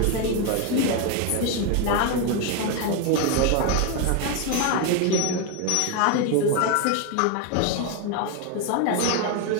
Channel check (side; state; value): both; different; correlation 0.01